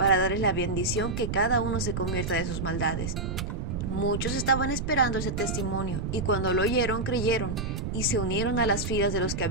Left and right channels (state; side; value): noise; right; rumble, 4 dB below the sound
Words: darles la bendición que cada uno se convierta de sus maldades». Muchos estaban esperando ese testimonio, y cuando lo oyeron, creyeron, y se unieron a las filas de los que